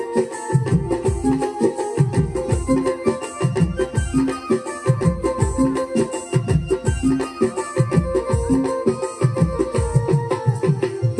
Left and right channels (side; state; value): both; identical; correlation 1.00